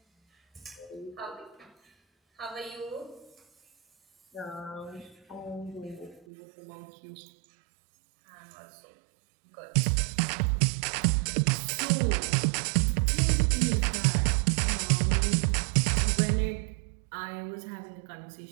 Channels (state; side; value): drops out; left; at 6.2 s